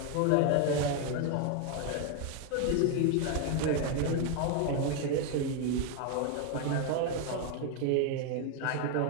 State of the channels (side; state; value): both; different; correlation 0.01